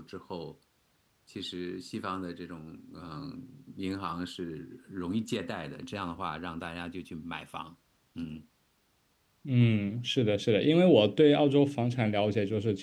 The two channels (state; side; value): identical; both; correlation 1.00